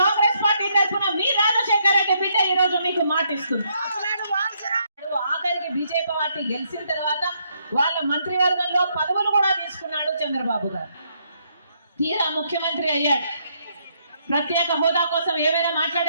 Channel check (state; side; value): inverted; both; correlation -0.73